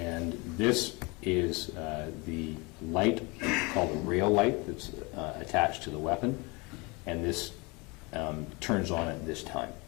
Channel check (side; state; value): right; quieter; 27.1 dB